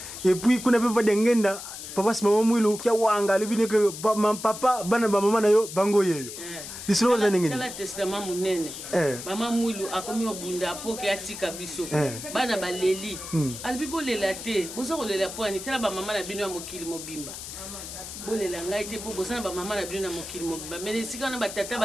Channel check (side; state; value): left; noise; hiss, 10 dB below the sound